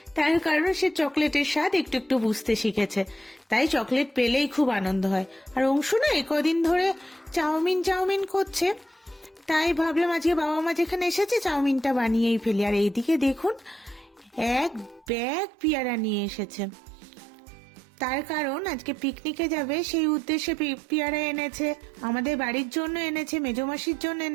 তার কারণ সে চকলেটের স্বাদ একটু একটু বুঝতে শিখেছে, তাই চকলেট পেলেই খুব আনন্দ হয়। আর অংশু না কদিন ধরে চাউমিন চাউমিন করছে, তাই ভাবলাম আজকে বাবা মা যেখানে এসেছে চাউমিনটা বানিয়েই ফেলি। আর এইদিকে দেখুন, এক ব্যাগ পেয়ারা নিয়ে এসেছে। তার কারণ আজকে পিকনিকে যাবে, সেই উদ্দেশ্যে পেয়ারা এনেছে, আমাদের বাড়ির জন্য এনেছে, মেজো মাসির জন্য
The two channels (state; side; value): drops out; left; at 15.1 s